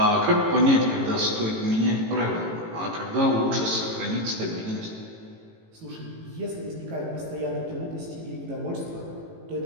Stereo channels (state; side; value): late; left; 18 ms